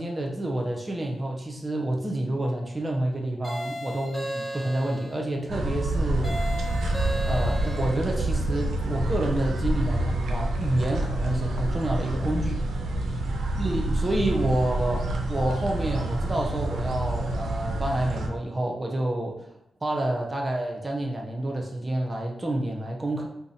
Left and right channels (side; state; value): both; normal; correlation 0.89